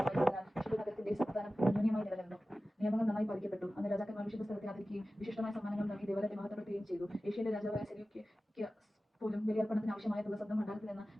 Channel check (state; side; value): normal; both; correlation 0.95